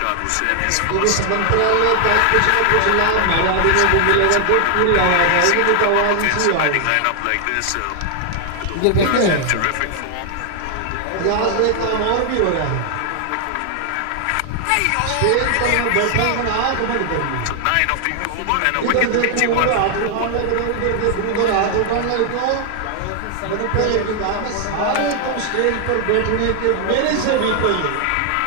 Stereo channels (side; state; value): both; different; correlation 0.00